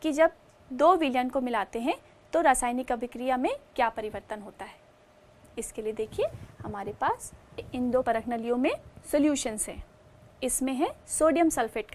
कि जब दो विलयन को मिलाते हैं तो रासायनिक अभिक्रिया में क्या परिवर्तन होता है। इसके लिए देखिए हमारे पास इन दो परख नलियों में सॉल्यूशंस हैं। इसमें है सोडियम सल्फेट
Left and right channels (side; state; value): both; identical; correlation 1.00